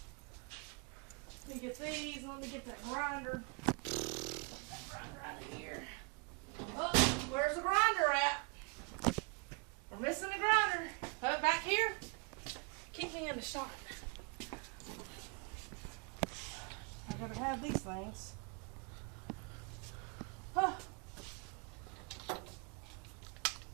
Let me get these, and let me get that grinder. That grinder right here. Oh, where's the grinder at? We're missing the grinder. Put it back here. Keep me in the shot. gotta have these things. Huh.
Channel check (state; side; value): quieter; left; 31.9 dB